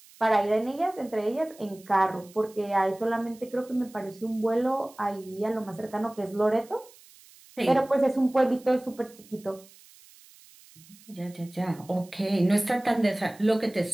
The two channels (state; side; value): noise; right; hiss, 24 dB below the sound